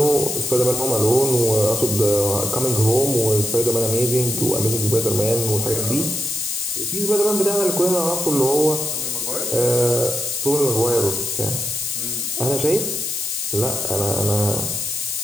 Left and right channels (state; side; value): noise; left; hiss, 3 dB below the sound